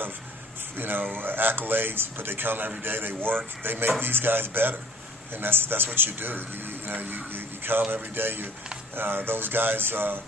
of accolades, but they come every day, they work, they make these guys better, and that's what you do. You come every day. Those guys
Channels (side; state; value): both; normal; correlation 0.52